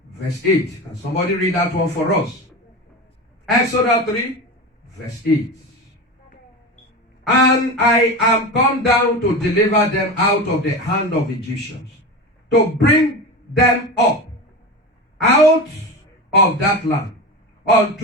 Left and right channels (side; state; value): both; normal; correlation 0.26